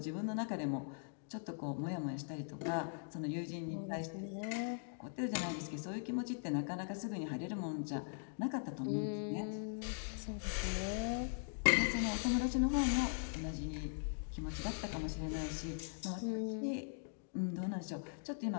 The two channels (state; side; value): silent; right; digital silence